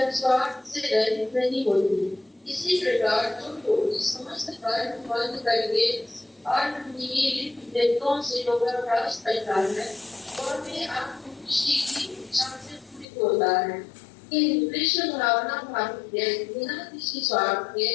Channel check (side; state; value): right; drops out; at 13.1 s